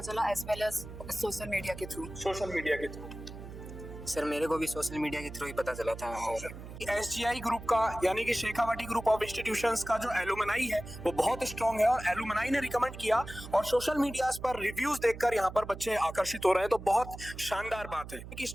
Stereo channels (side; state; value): right; noise; hum, 12 dB below the sound